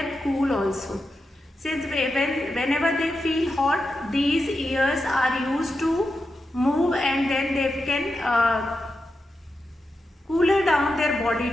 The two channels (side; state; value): both; normal; correlation 0.88